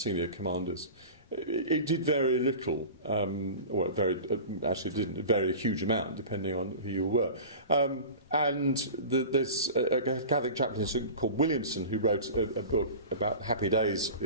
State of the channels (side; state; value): both; inverted; correlation -0.35